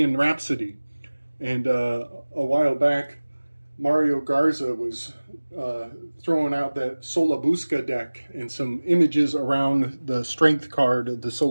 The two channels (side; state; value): both; inverted; correlation -1.00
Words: Rhapsody. And a while back, Mario Garza was throwing out that Solabusca deck and some images around the strength card of the